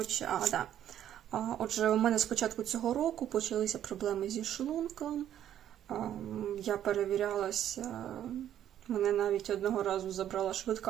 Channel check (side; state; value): left; quieter; 10.8 dB